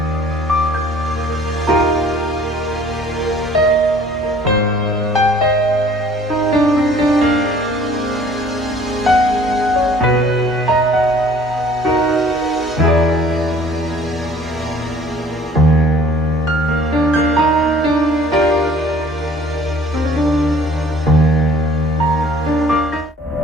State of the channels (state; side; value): normal; both; correlation 0.53